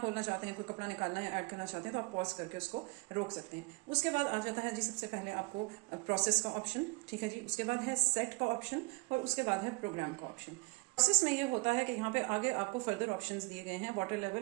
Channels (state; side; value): quieter; left; 28.8 dB